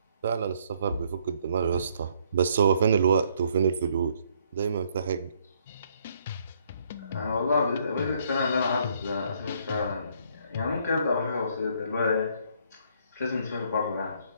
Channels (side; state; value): both; inverted; correlation -0.67